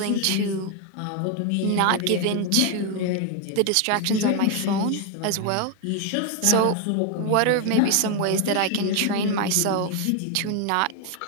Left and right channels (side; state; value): both; different; correlation 0.01